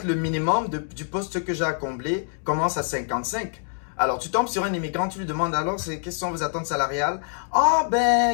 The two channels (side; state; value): right; silent; 62 dB below the other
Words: le minimum du poste que j'ai à combler commence à 55. Alors, tu tombes sur un immigrant, tu lui demandes alors, quelles sont vos attentes salariales? Ah,